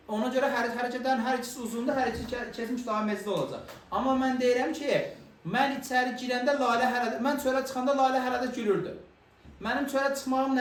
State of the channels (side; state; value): both; identical; correlation 1.00